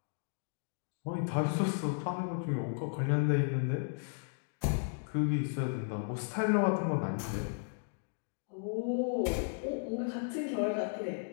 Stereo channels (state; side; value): silent; right; digital silence